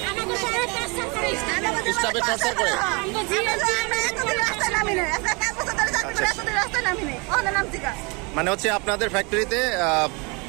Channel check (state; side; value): quieter; left; 29.7 dB